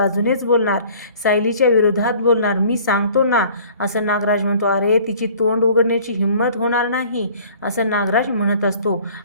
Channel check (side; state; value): both; inverted; correlation -0.51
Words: बोलणार, सायलीच्या विरोधात बोलणार, मी सांगतो ना, असं नागराज म्हणतो. अरे तिची तोंड उघडण्याची हिंमत होणार नाही, असं नागराज म्हणत असतो.